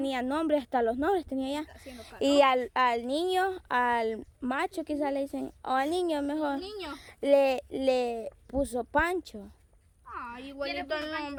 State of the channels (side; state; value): both; identical; correlation 1.00